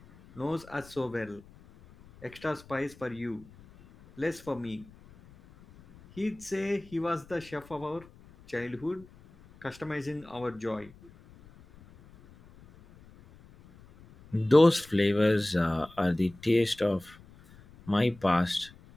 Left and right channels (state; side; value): noise; left; rumble, 23 dB below the sound